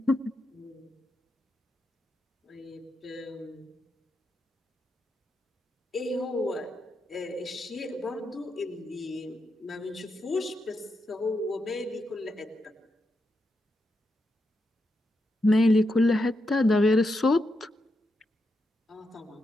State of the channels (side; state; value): both; normal; correlation 0.84